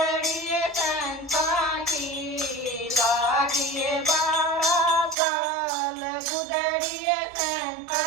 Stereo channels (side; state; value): left; drops out; at 5.2 s